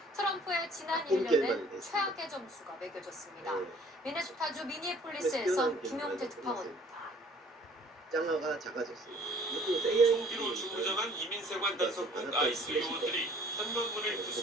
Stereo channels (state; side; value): normal; both; correlation 0.54